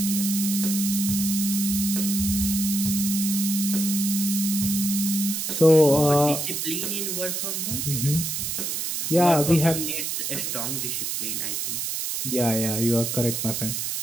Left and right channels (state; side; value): noise; right; hiss, 2 dB below the sound